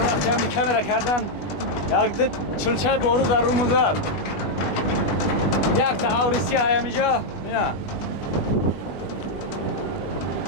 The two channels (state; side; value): late; right; 21 ms